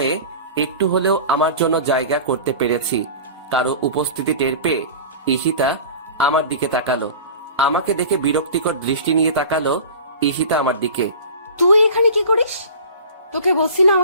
একটু হলেও আমার জন্য জায়গা করতে পেরেছি। কারো উপস্থিতি টের পেয়ে ঈশিতা আমার দিকে তাকালো। আমাকে দেখে বিরক্তিকর দৃষ্টি নিয়ে তাকালো ঈশিতা আমার দিকে। তুই এখানে কি করিস? তোকে বলছি না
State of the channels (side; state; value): both; inverted; correlation -0.38